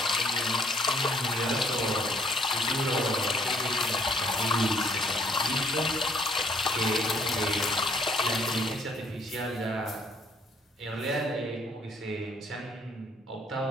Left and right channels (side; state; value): both; normal; correlation 0.64